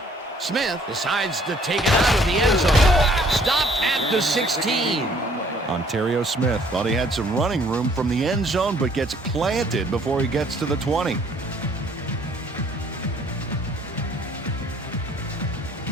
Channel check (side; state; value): both; normal; correlation 0.60